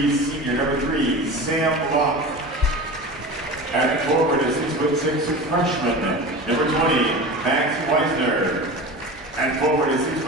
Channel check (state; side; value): normal; both; correlation 0.31